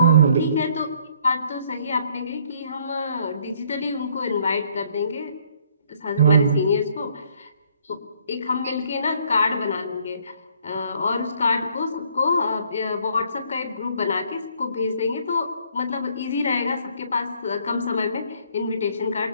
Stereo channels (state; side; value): inverted; both; correlation -0.63